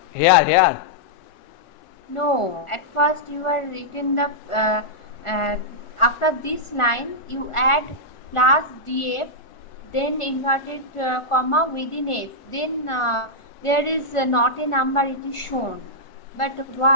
Here. No, at first you are written the after this line you add plus df, then inverted comma within f, then there is not a number, it is shown. But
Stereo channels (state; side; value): late; right; 1.4 ms